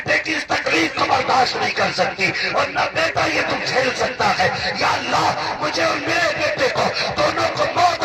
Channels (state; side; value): identical; both; correlation 1.00